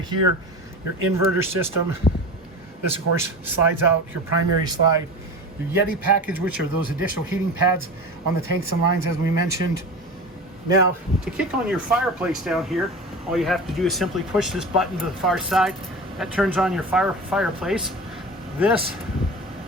here, your inverter system. This, of course, slides out your primary slide. Your Yeti package, which are those additional heating pads on the tanks and lines, as we mentioned. Now, to kick on your fireplace down here, all you have to do is simply push this button to the far side. That turns on your fireplace. This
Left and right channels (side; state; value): both; normal; correlation 0.31